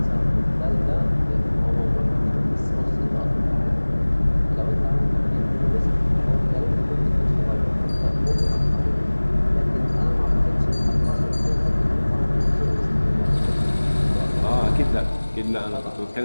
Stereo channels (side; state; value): both; inverted; correlation -1.00